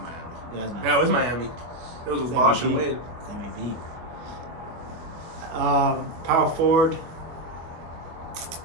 Miami. Yeah, it was Miami. It was Bosh and Wade. It's MVP. Power forward. This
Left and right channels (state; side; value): late; left; 24 ms